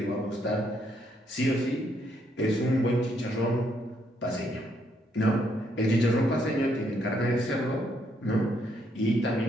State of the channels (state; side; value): normal; both; correlation 0.73